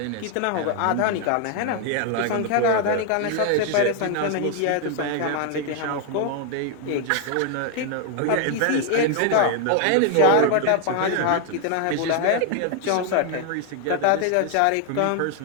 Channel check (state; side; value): different; both; correlation 0.00